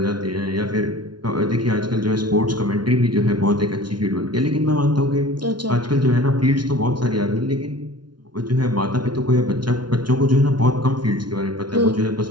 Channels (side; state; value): left; late; 0.71 ms